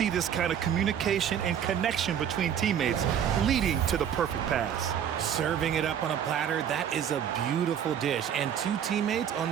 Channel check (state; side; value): quieter; left; 9.0 dB